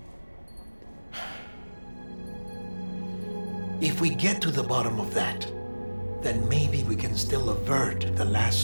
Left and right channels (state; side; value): inverted; both; correlation -1.00